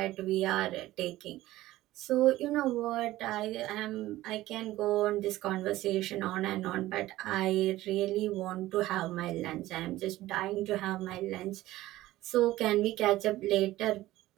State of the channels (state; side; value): quieter; left; 16.3 dB